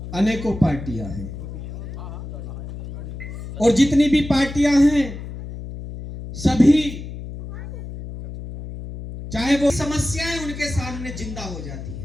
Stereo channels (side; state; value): left; noise; hum, 10 dB below the sound